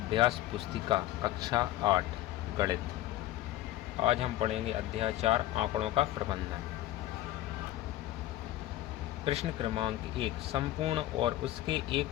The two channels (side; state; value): right; quieter; 14.7 dB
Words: पुस्तिका कक्षा 8 गणित। आज हम पढ़ेंगे अध्याय 4 आंकड़ों का प्रबंधन। प्रश्न क्रमांक 1 संपूर्ण और उसके एक